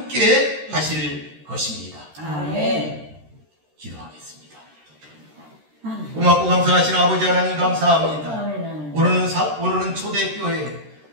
하실 것입니다. 기도하겠습니다. 고맙고 감사하신 아버지 하나님 감사합니다. 오늘은 초대교회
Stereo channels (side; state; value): left; late; 13 ms